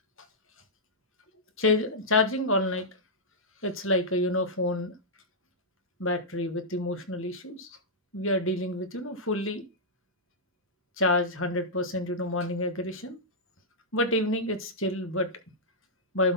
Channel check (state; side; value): normal; both; correlation -0.10